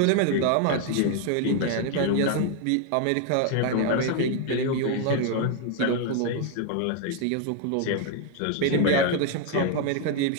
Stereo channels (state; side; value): different; both; correlation 0.00